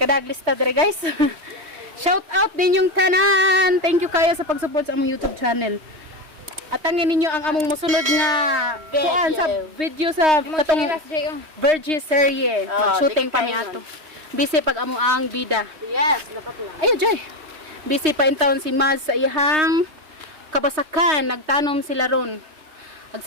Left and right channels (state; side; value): late; left; 3.2 ms